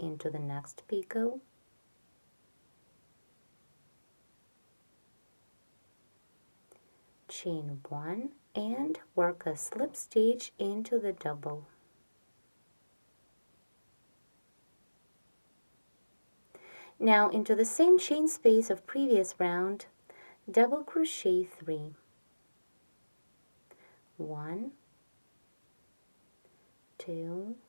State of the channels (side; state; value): both; inverted; correlation -1.00